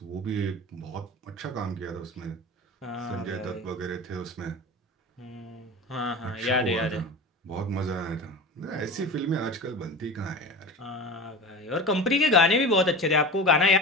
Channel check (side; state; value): both; normal; correlation 0.30